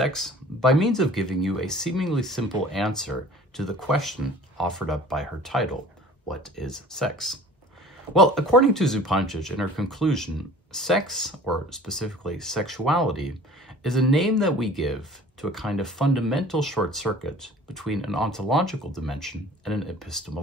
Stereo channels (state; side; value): normal; both; correlation 0.46